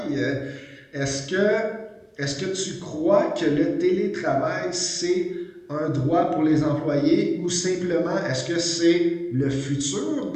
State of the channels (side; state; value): both; identical; correlation 1.00